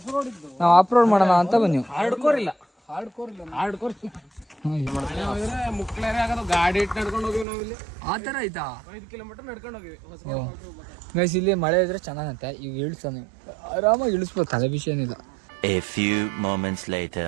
ನಾವು ಆಫ್ ರೋಡ್ ಮಾಡೋಣ ಅಂತ ಬನ್ನಿ. ಹಾರ್ಡ್ಕೋರ್ ಮುಕ್ಳೇರೆ ಆಗೋದು. ಗಾಡಿ ಇಟ್ಟು ನಡ್ಕೊಂಡು ಹೋಗಿವಿ ನಾವಿಲ್ಲಿ. ಆ ಥರ ಆಯ್ತಾ? 5 ಕಿಲೋಮೀಟರ್ ನಡ್ಕೊಂಡು ಹೋಗಿವಿ. ಗೈಸ್ ಇಲ್ಲಿ ಮಳೆ ಇದ್ರೆ ಚೆನ್ನಾಗಂತೆ. ಈಗ ಇಳಿಸ್ತಾನೆ, ಆರಾಮಾಗಿ ಇಳಿಸ್ಬೋದು, ತಲೆ ವಿಷಯ ಏನಿಲ್ಲ. A few moments later.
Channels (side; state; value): left; drops out; at 7.5 s